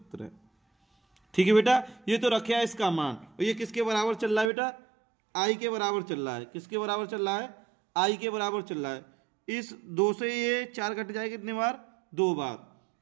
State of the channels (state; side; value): drops out; left; at 4.5 s